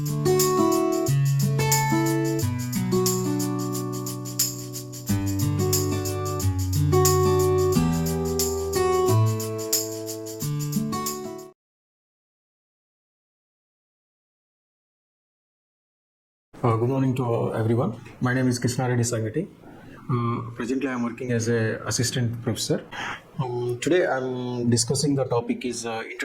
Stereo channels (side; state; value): both; identical; correlation 1.00